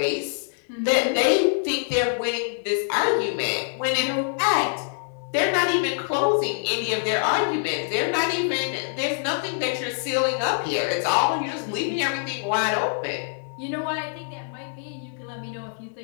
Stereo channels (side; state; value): right; silent; 62 dB below the other